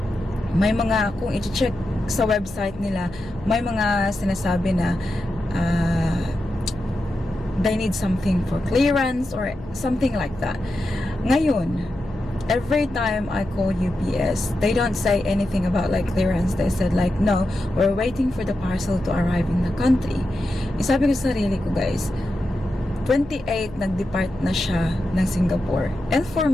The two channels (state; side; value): noise; left; hum, 16 dB below the sound